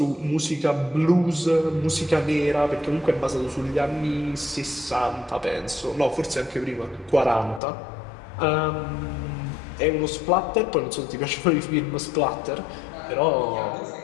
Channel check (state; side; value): drops out; right; at 7.6 s